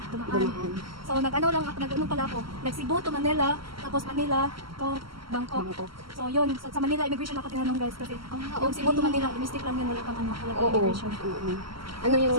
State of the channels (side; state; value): left; late; 0.74 ms